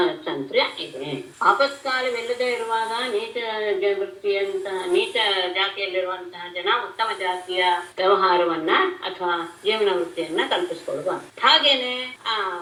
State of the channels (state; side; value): identical; both; correlation 1.00